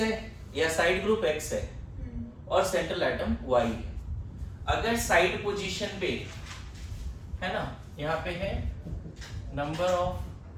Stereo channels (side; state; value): both; identical; correlation 1.00